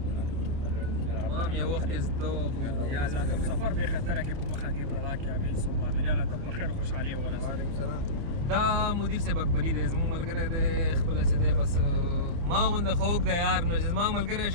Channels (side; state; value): left; late; 29 ms